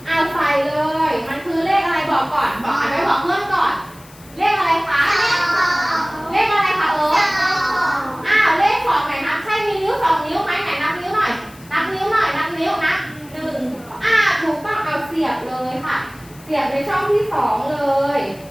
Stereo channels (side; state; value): left; noise; hiss, 24 dB below the sound